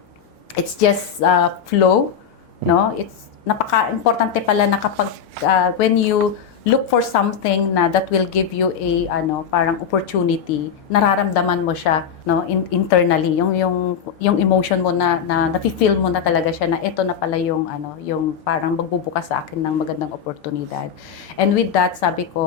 it's just flow, no? It's napaka-importante pala na kapag when you look for something na that will give you a parang opportunity, nararamdaman mo siya, no, internally, yung emotion mo na nafi-feel mo na talaga siya na ito na pala yung parang magbubukas sa akin ng magandang oportunidad. And with that, sabi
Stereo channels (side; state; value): right; quieter; 7.5 dB